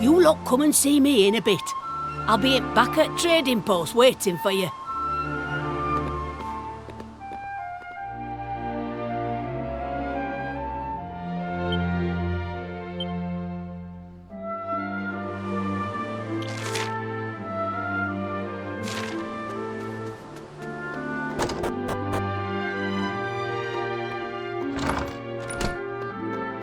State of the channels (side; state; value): both; identical; correlation 1.00